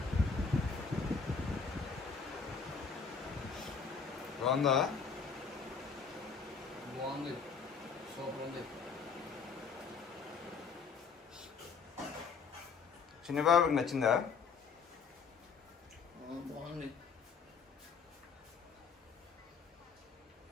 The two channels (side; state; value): right; quieter; 5.5 dB